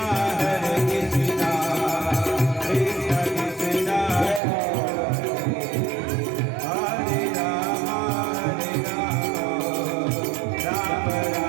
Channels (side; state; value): left; drops out; at 4.4 s